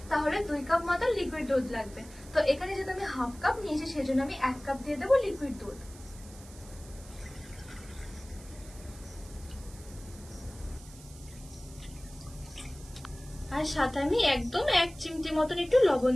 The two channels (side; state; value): right; noise; hiss, 20 dB below the sound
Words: তাহলে 2 কাপ মতো লিকুইড দুধ লাগবে। তো এখানে যেহেতু আমি হাফ কাপ নিয়েছি সেজন্য আমি 1 কাপ দিয়ে দেবো লিকুইড দুধ। আর সাথে আমি একদম 1 চিমটি মতন একটু লবণ